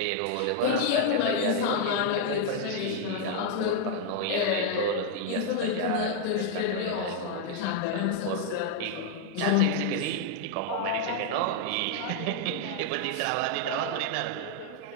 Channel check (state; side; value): different; both; correlation 0.00